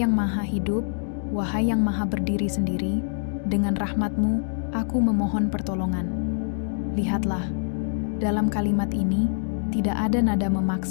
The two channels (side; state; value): right; silent; digital silence